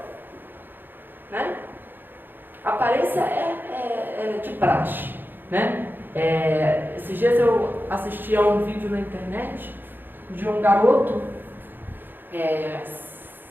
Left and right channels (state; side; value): late; left; 0.095 ms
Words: né? A aparência é de praxe, né? Esses dias eu assisti a um vídeo na internet de um garoto